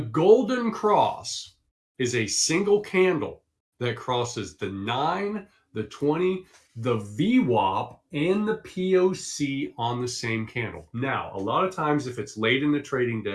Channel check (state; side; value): identical; both; correlation 1.00